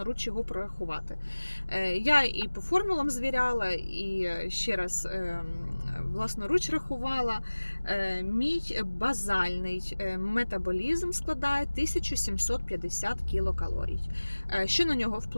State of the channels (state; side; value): inverted; both; correlation -1.00